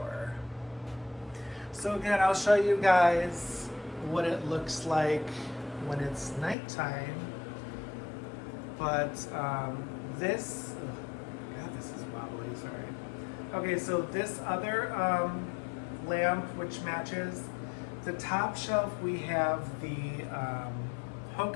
So again, I'll show you guys what it looks like when it's nighttime. But this, God, this is wobbly, sorry. Okay, so this other lamp, which matches the top shelf, we have the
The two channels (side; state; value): right; drops out; at 6.6 s